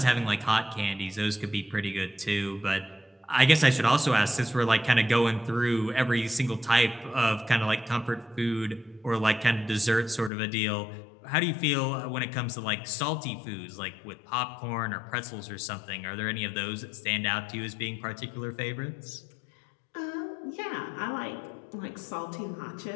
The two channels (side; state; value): right; drops out; at 10.3 s